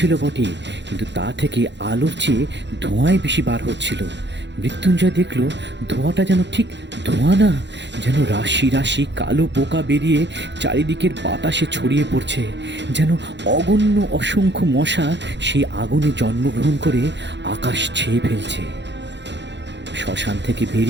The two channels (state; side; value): late; left; 0.52 ms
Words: বটে, কিন্তু তা থেকে আলোর চেয়ে ধোঁয়াই বেশি বার হচ্ছিল। মৃত্যুঞ্জয় দেখল ধোঁয়াটা যেন ঠিক ধোঁয়া না, যেন রাশি রাশি কালো পোকা বেরিয়ে চারিদিকের বাতাসে ছড়িয়ে পড়ছে। যেন অগণ্য অসংখ্য মশা সেই আগুনে জন্মগ্রহণ করে আকাশ ছেয়ে ফেলছে। শ্মশান থেকে